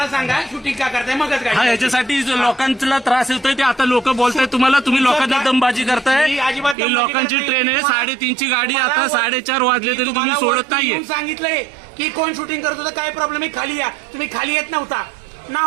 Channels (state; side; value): drops out; left; at 6.8 s